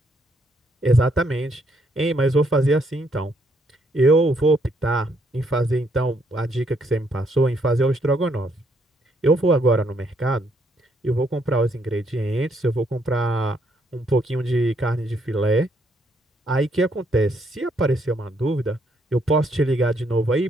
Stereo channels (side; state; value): both; normal; correlation 0.72